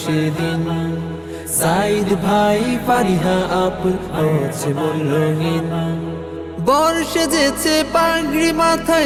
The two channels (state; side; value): identical; both; correlation 1.00